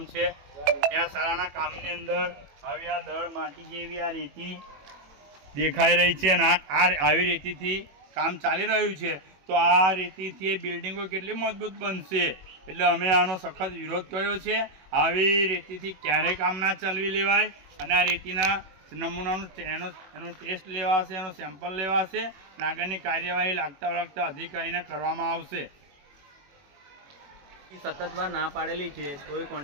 છે। ત્યાં શાળાના કામની અંદર આવી આ દળ માટી જેવી આ રેતી દેખાઈ રહી છે અને આવી રેતીથી કામ ચાલી રહ્યું છે। તો આ રેતીથી બિલ્ડિંગો કેટલી મજબૂત બનશે એટલે અમે આનો સખત વિરોધ કર્યો છે। આવી રેતીથી ક્યારેય કામ ના ચાલવી લેવાય અને આ રેતીના નમૂનાનું એનો ટેસ્ટ લેવાશે, એનો સેમ્પલ લેવાશે અને આગળની કાર્યવાહી લાગતા અધિકારીને કરવામાં આવશે। સતત વાર ના પાડેલી છે તોય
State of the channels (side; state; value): left; late; 21 ms